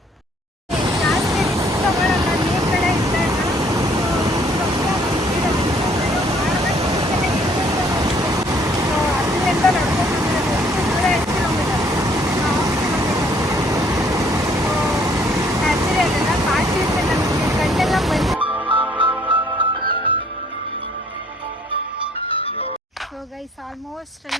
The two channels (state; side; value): normal; both; correlation 0.61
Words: ಸೊ ಗೈಸ್ ಆಲ್ಮೋಸ್ಟ್